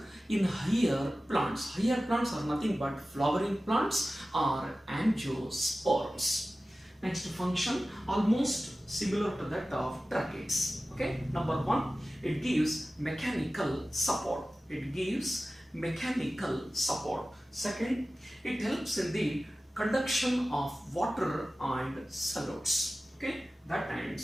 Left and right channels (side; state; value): both; normal; correlation 0.96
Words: in higher plants. Higher plants are nothing but flowering plants or angiosperms. Next function, almost similar to that of tracheids. Okay, number one, it gives mechanical support. It gives mechanical support. Second, it helps in the conduction of water and solids. Okay, that